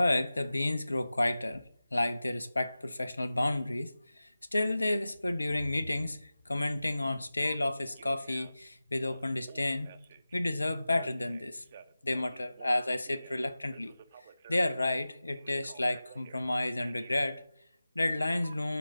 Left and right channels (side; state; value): both; inverted; correlation -0.96